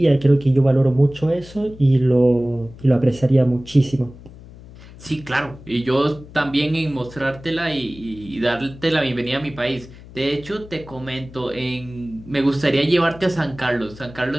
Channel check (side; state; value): left; noise; hum, 19 dB below the sound